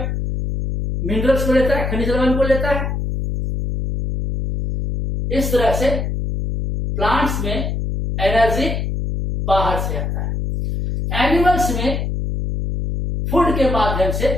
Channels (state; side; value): noise; left; hum, 2 dB below the sound